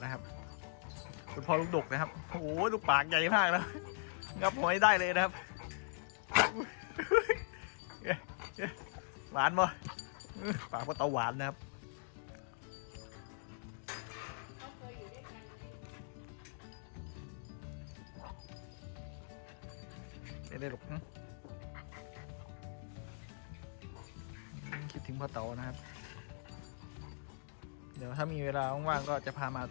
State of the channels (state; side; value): silent; right; digital silence